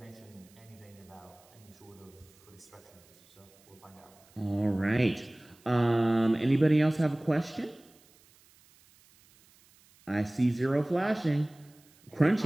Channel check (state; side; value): noise; right; hiss, 29 dB below the sound